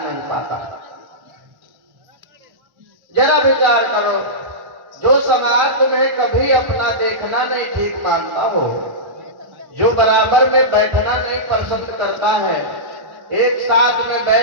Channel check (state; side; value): late; left; 1.1 ms